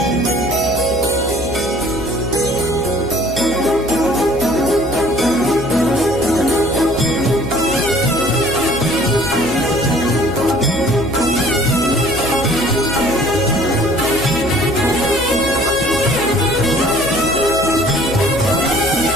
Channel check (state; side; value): noise; left; hum, 12 dB below the sound